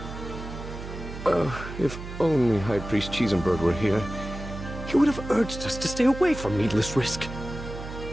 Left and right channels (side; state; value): right; noise; hum, 10 dB below the sound